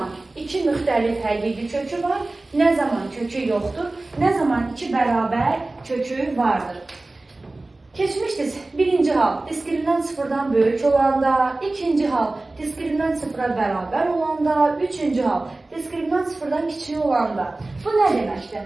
iki müxtəlif həqiqi kökü var, nə zaman kökü yoxdur, nə zaman iki bərabər kökü vardır. Keçmişdir. Birinci hal diskriminant sıfırdan böyük olanda, ikinci hal diskriminant sıfıra bərabər olanda, üçüncü hal diskriminant sıfırdan kiçik olanda. Bu nə deməkdir?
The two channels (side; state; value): left; quieter; 3.0 dB